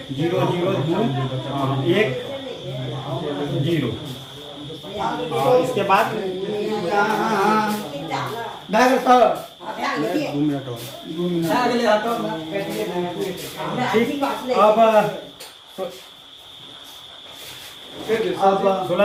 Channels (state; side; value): identical; both; correlation 1.00